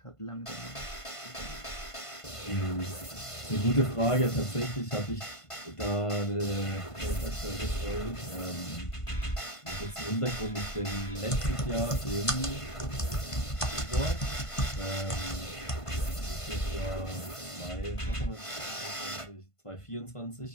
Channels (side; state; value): right; late; 1.5 ms